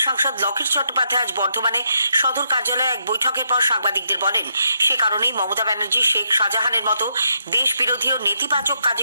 সাংসদ লকেট চট্টোপাধ্যায় আজ বর্ধমানে সদর কার্যালয়ে এক বৈঠকের পর সাংবাদিকদের বলেন, সে কারণেই মমতা ব্যানার্জি শেখ শাহজাহানের মতো দেশ বিরোধী ও নেতিবাচক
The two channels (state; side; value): inverted; both; correlation -0.78